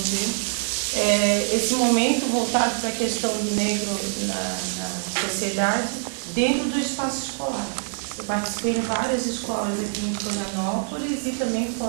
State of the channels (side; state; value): left; silent; 60 dB below the other